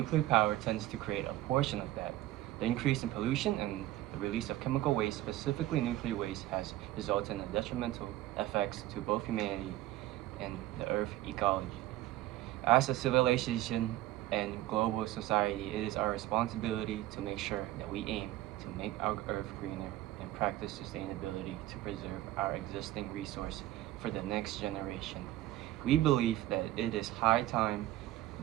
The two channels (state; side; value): quieter; left; 15.3 dB